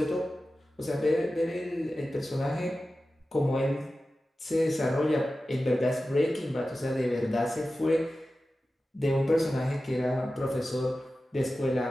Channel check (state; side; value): normal; both; correlation 0.94